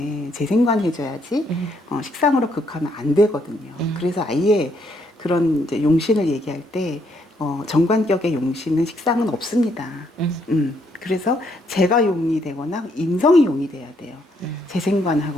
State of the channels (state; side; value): normal; both; correlation 0.72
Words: 재생관 해줘야지 식상으로 극하면 안 되거든요. 그래서 아예 그런 이제 용신을 얘기할 때 정관격의 용신은 식상은 없습니다. 그래서 재가 용이 되거나 인성이 용이 돼야 돼요.